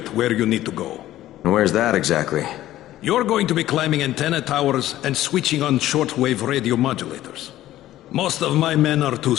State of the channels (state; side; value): quieter; right; 14.2 dB